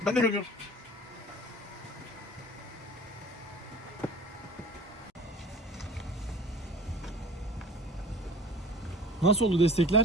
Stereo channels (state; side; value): normal; both; correlation 0.43